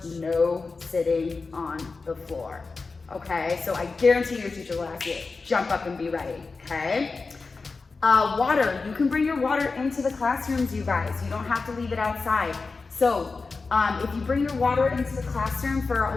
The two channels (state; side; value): quieter; right; 4.2 dB